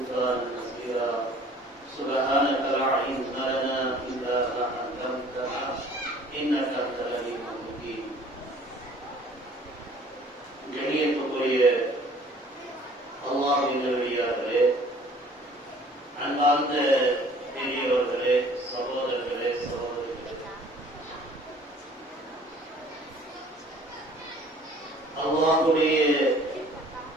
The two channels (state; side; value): normal; both; correlation 0.52